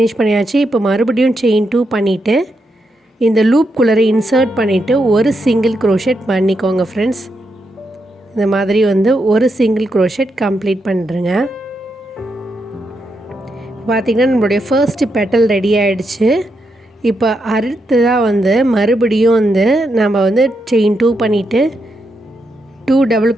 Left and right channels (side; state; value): both; normal; correlation 0.83